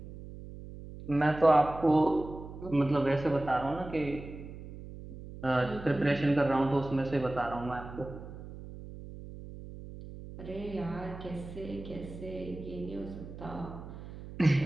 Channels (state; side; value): noise; right; hum, 13 dB below the sound